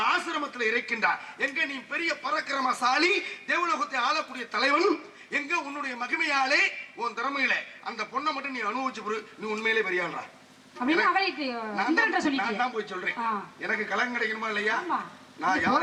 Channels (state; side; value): identical; both; correlation 1.00